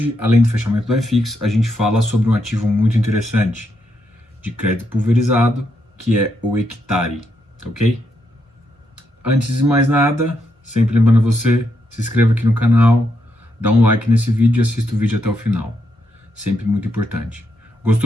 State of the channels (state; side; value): normal; both; correlation 0.80